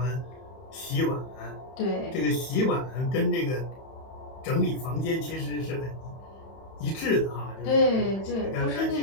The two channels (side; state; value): right; late; 31 ms